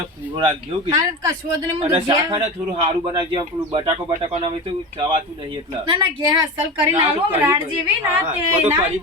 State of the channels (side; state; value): both; normal; correlation 0.26